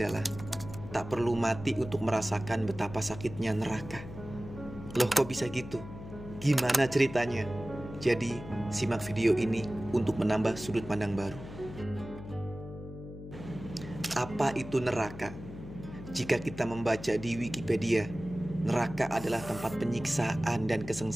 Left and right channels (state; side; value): noise; left; hum, 12 dB below the sound